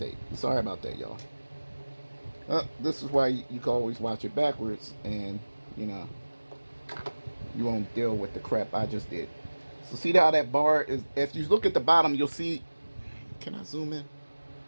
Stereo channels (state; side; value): inverted; both; correlation -1.00